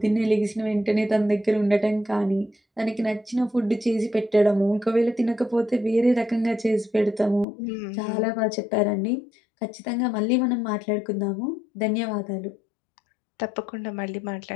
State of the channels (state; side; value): drops out; right; at 7.5 s